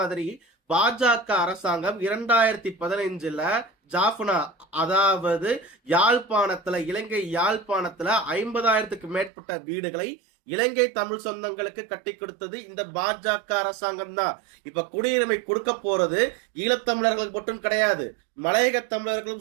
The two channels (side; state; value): left; drops out; at 9.3 s